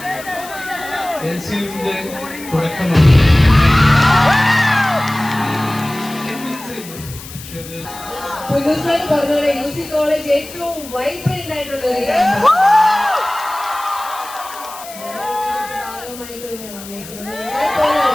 എൽസിയുടെ തുടക്കമാണ്. പുതുസായി പറഞ്ഞ യൂസി കോളേജ് ഏറ്റവും വൈബ്രന്റ് ആയിട്ടുള്ള ഒരു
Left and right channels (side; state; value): left; noise; hiss, 15 dB below the sound